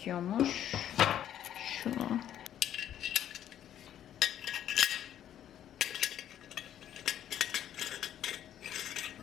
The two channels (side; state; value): right; quieter; 10.7 dB